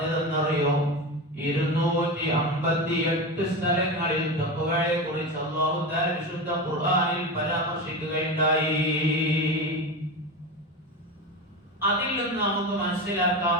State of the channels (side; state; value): both; normal; correlation 0.22